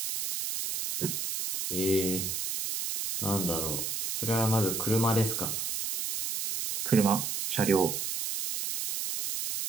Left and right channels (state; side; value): noise; right; hiss, 3 dB below the sound